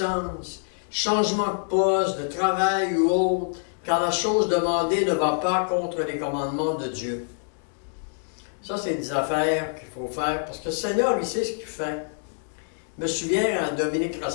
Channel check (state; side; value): silent; right; digital silence